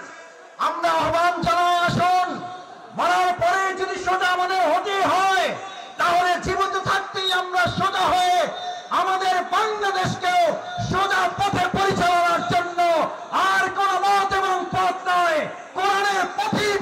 আমরা আহ্বান জানাই, আসুন, মরার পরে যদি সোজা আমাদের হতে হয়, তাহলে জীবিত থাকতেই আমরা সোজা হয়ে আমাদের বাংলাদেশকেও সোজা পথে পরিচালনার জন্য আর কোন মত এবং পথ নয়, কোরআনের পথেই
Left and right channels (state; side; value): identical; both; correlation 1.00